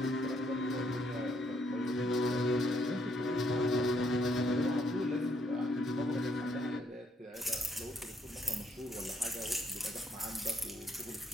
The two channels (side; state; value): both; normal; correlation 0.71